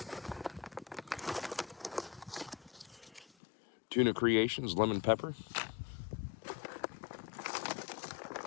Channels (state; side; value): drops out; right; at 3.2 s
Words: Tuna Creations lemon pepper.